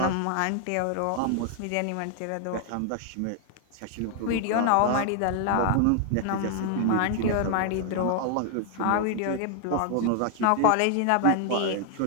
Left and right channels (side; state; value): both; different; correlation 0.00